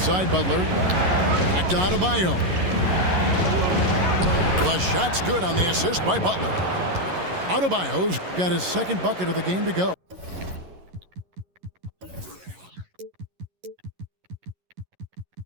side, Butler. Back to Adebayo. The shot's good on the assist by Butler. Adebayo's got his second bucket of the game to go.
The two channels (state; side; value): late; left; 11 ms